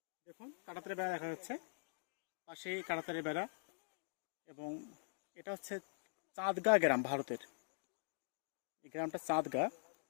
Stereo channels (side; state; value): right; silent; digital silence